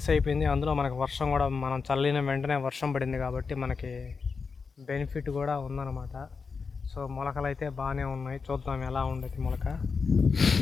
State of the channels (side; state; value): right; quieter; 5.1 dB